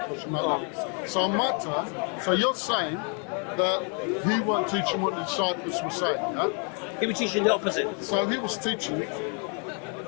a question like that. So on my turn, so you're saying that he weren't teaching what the disciples were saying, yeah? He was teaching the opposite. So he was teaching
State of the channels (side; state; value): right; quieter; 39.5 dB